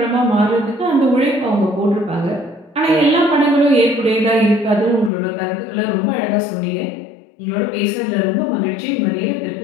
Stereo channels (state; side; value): drops out; right; at 5.1 s